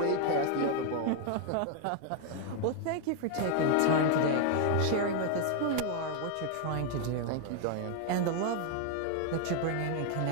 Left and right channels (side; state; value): both; different; correlation 0.00